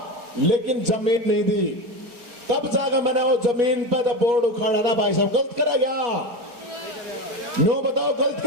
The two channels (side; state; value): left; late; 4.2 ms